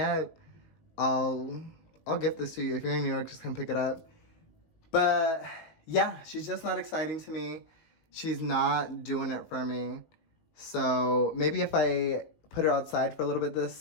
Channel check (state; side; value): late; right; 19 ms